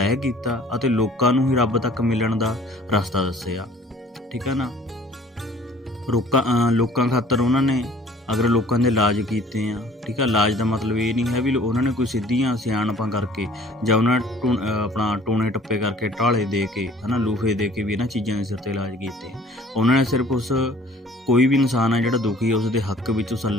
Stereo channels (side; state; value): both; normal; correlation 0.52